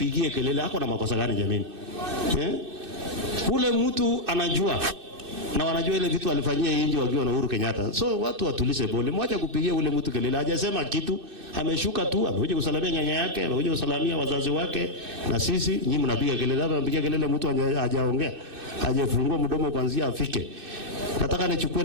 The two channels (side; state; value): left; late; 2.6 ms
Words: kelele. Hako na makosa gani jameni? Ule mtu anajua na wanajua ile vitu alifanyia nje wakiwa na Uhuru Kenyatta. So watu watulize bole. Mwacha kupigia ule mtu kelele. Hajasema kitu, ameshuka tu, amekuja kusalamia nyanya yake, amekuja kusalamia wazazi wake na sisi. Nyinyi mnapiga kelele, hapa mnapiga kelele mtu hajaongea. Hajafungua mdomo kuanzia afike. Nataka nichukue